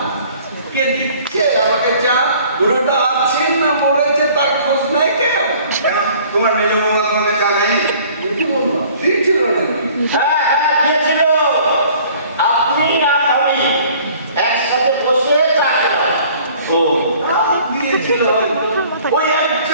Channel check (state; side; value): inverted; both; correlation -0.53